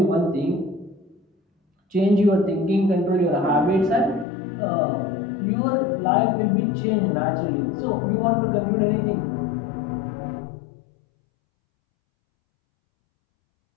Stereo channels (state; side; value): drops out; right; at 4.2 s